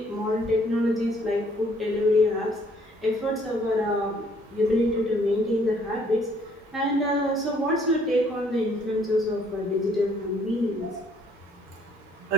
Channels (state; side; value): normal; both; correlation 0.63